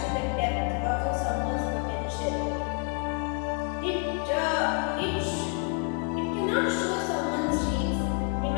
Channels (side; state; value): right; quieter; 39.4 dB